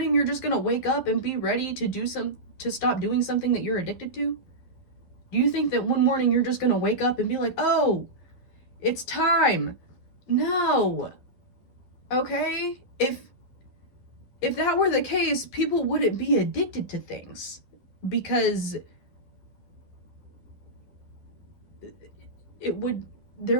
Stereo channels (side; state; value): right; late; 11 ms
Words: you're just going to wake up and be ready to stop doing something that you're addicted to? Do you think that one morning you're just going to wake up and be like, "Oh, it's time"? No. Okay? If that were the case, people wouldn't be addicted to things, because